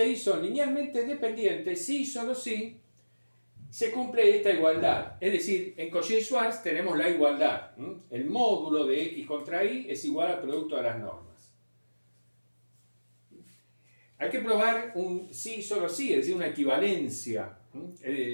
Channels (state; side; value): inverted; both; correlation -1.00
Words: y son linealmente dependientes si y solo si se cumple esta igualdad. Es decir, en Cauchy-Schwarz tenemos la igualdad. El módulo de x contra y es igual al producto de las normas. Hay que probar un sí y solo sí, es decir, una equivalencia.